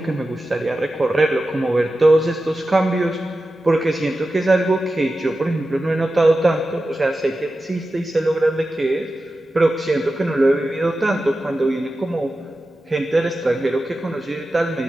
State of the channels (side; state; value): both; normal; correlation 0.93